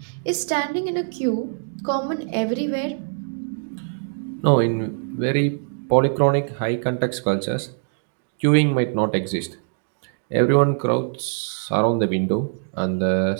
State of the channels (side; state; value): left; silent; digital silence